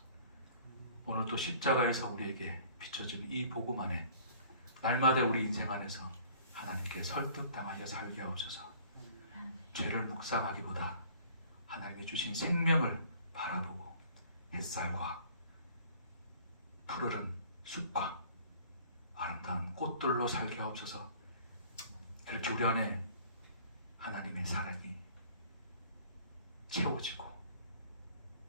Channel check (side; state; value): both; inverted; correlation -0.52